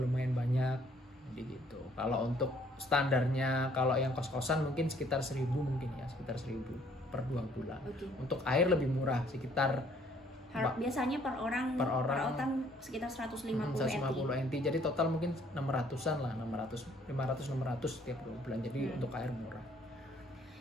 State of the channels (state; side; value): normal; both; correlation 0.62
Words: banyak. Jadi gitu. Kalau untuk standarnya, kalau yang kos-kosan mungkin sekitar 1.000 mungkin ya, sekitar 1.000 per 2 bulan. Okay. Untuk air lebih murah, sekitar biasanya per orang sekitar 150 NT. Jadi total mungkin 600-an lah, 500-600 tiap 2 bulan. Jadi untuk air murah.